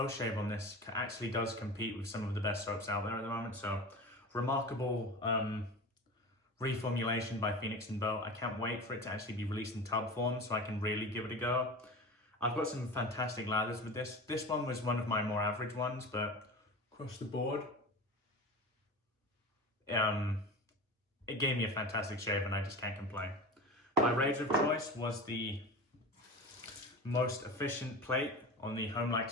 on this actually does compete with some of the best soaps out there at the moment. So, remarkable reformulation by Phoenix and Beau. I can't wait for it to actually be released in tub form so I can really give it a go. I've got some fantastic lathers with this. This one was one of my more average ones, but across the board, it gave me a fantastic shave and I just can't complain. My razor of choice was the most efficient plate on the Homelike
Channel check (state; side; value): normal; both; correlation 0.31